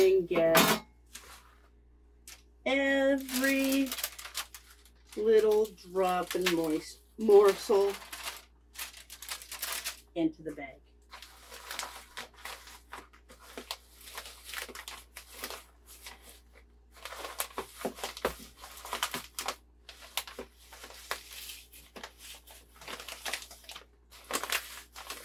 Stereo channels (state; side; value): identical; both; correlation 1.00